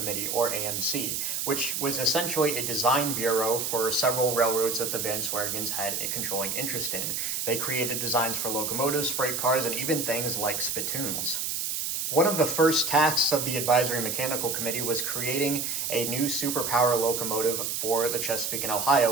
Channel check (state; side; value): noise; right; hiss, 2 dB below the sound